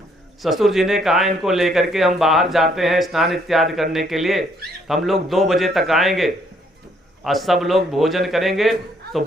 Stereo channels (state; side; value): normal; both; correlation 0.68